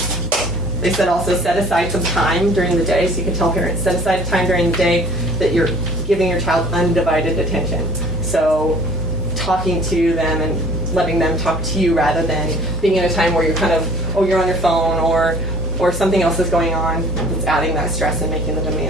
They said also set aside some time during the day, so you can tell parents, set aside time during the day that you're giving your child undivided attention. So talking to them and letting them talk to you rather than being in a time where you're kind of, you're on your phone or something else is going on. It's adding that stress and making the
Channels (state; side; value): normal; both; correlation 0.50